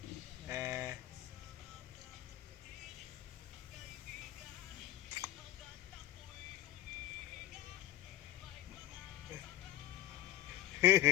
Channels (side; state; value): right; quieter; 14.3 dB